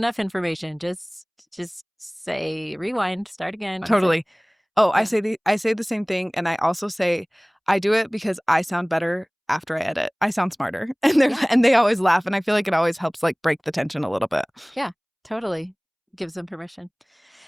information, just say rewind, start again. Totally. I say the same thing. And I also say I do it because I sound better after I edit. I sound smarter. And they always laugh. And I feel like it always helps like break the tension a little bit. Yeah, totally. Gives them permission.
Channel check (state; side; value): identical; both; correlation 1.00